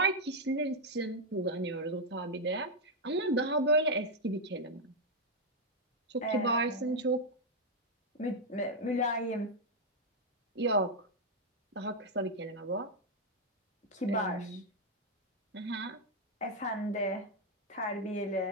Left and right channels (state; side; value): normal; both; correlation 0.00